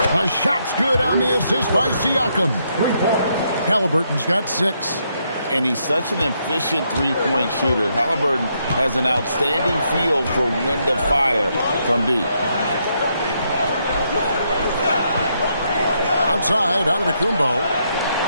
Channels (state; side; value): inverted; both; correlation -0.77